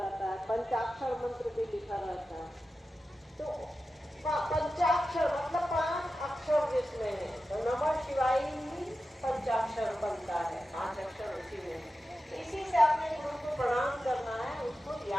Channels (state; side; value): normal; both; correlation 0.92